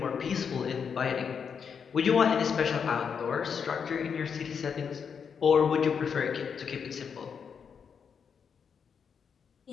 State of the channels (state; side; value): quieter; right; 6.7 dB